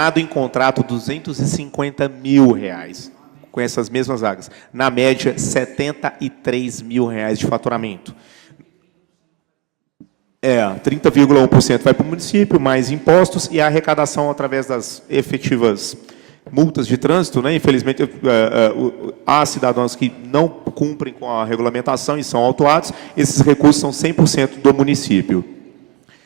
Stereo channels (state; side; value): quieter; left; 19.5 dB